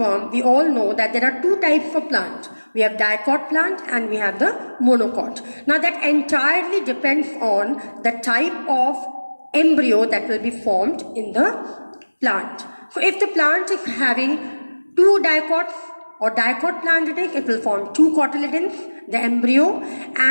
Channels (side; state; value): both; inverted; correlation -1.00